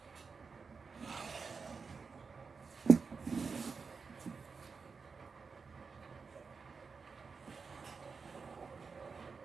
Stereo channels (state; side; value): quieter; left; 5.0 dB